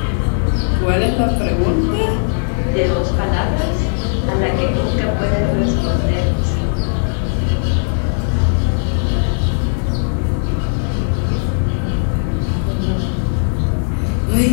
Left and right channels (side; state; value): right; silent; digital silence